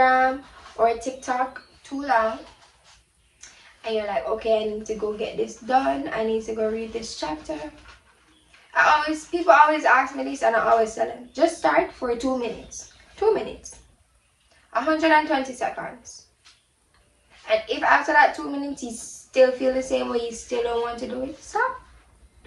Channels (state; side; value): identical; both; correlation 1.00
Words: or TikTok too long, and you're like, okay, I need to go get this done, I need to go read this chapter. People always ask me this, and I always tell them, just start for 2 minutes. 2 minutes. 120 seconds. And if after that 2 minutes you still feel the same way, you still don't want to do it, stop.